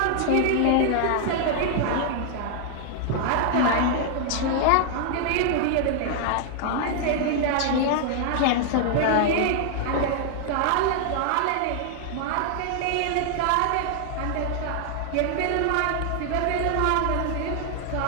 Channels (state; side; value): different; both; correlation 0.00